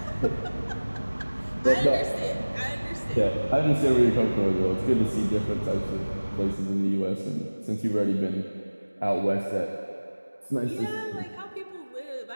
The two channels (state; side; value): inverted; both; correlation -1.00